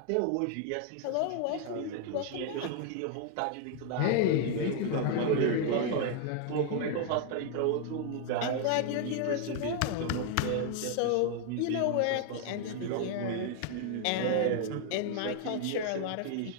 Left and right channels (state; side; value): different; both; correlation 0.00